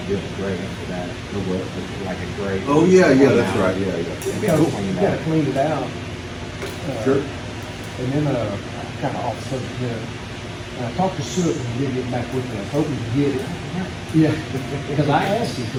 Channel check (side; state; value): both; identical; correlation 1.00